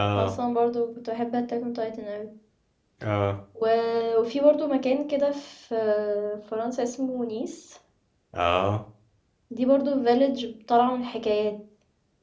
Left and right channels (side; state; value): both; identical; correlation 1.00